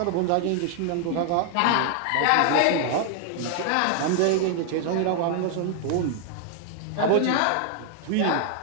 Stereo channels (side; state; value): both; different; correlation 0.00